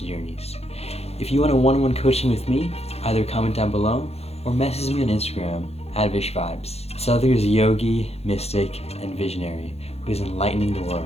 journeys. If you want a one-on-one coaching with me, either comment down below or message me on Instagram at VishVibez. Sadhguru is a yogi, mystic, and visionary who is enlightening the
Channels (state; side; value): late; right; 0.30 ms